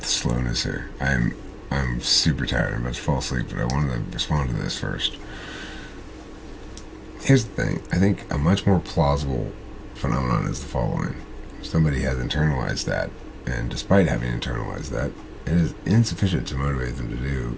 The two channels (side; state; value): both; identical; correlation 1.00